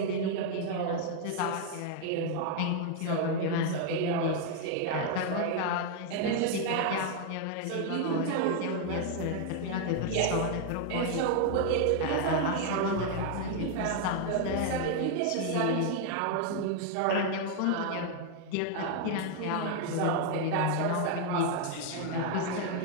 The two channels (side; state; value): both; different; correlation 0.00